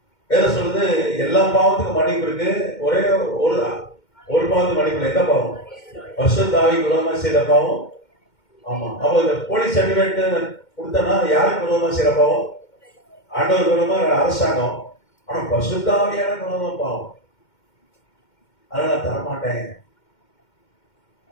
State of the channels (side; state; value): right; late; 2.1 ms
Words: வேதம் சொல்லுது எல்லா பாவத்துக்கும் மன்னிப்பு இருக்கு, ஒரே ஒரு பாவத்துக்கு மன்னிப்பு இல்லை. எந்த பாவம்? பரிசுத்தாவிக்கு விரோதமா செய்த பாவம். ஆமா. அப்போ இந்த போலீஸ் சர்டிபிகேட் கொடுத்தனா யாருக்கு விரோதமா செய்யற பாவம்? ஆண்டவர் விரோதமா அரசாங்கம். ஆனா பரிசுத்தாவியான விரோதமா பாவம். அதனால நான் தரமாட்டேன்